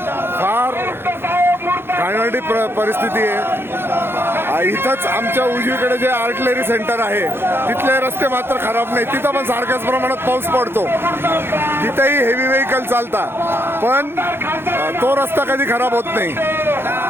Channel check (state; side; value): late; left; 0.11 ms